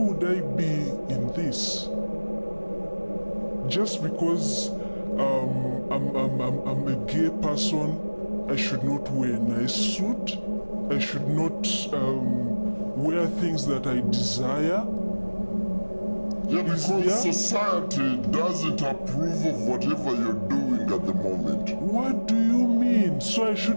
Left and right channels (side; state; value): both; inverted; correlation -1.00